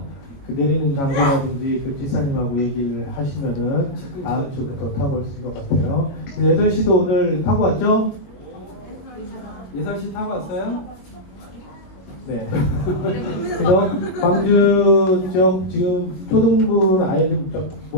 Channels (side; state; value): right; late; 21 ms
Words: 그 내리는 장소라든지 그 기사님하고 얘기를 하시면은 다음 주부터 타고 오실 것 같아요. 8시도 오늘 타고 왔죠? 예설씨 타고 왔어요? 네. 그래서 광주 지역 지금 초등부는 아예 좀